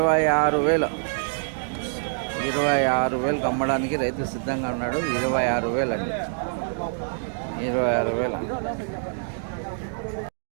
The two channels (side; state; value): left; silent; digital silence